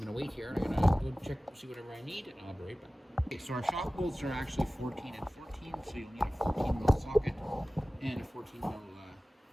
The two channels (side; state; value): both; normal; correlation 0.97